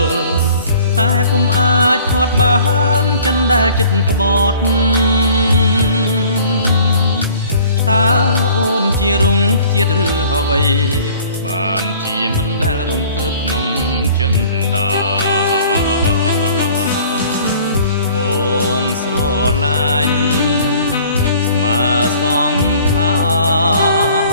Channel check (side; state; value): both; inverted; correlation -0.51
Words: តែពុំអាចផាត់បានចិនដែលចិត្តក្បត់តើអូនជារុងខ្ជាតិឬអ្វីបានជាមិនដែលរំភើបក្នុងចិនដាបងស្រឡាញ់ស្មើសងខា